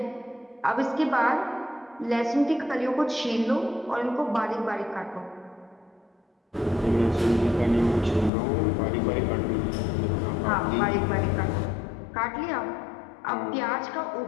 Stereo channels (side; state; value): right; drops out; at 8.3 s